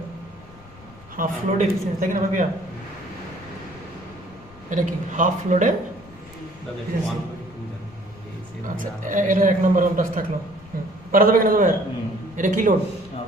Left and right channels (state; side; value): noise; left; rumble, 23 dB below the sound